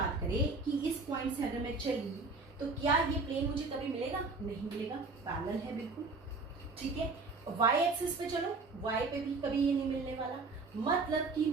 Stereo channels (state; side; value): quieter; left; 3.8 dB